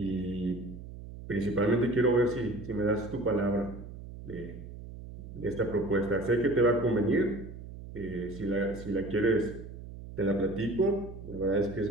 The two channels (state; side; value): noise; right; hum, 13 dB below the sound